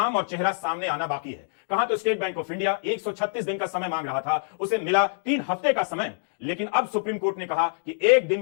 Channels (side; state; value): right; silent; digital silence